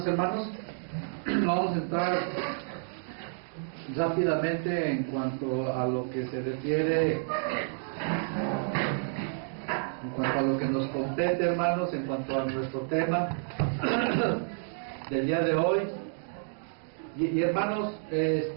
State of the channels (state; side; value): silent; left; digital silence